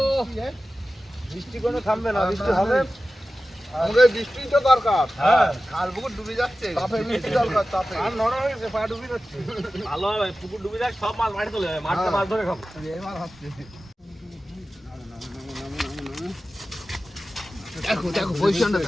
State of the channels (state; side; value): normal; both; correlation 0.95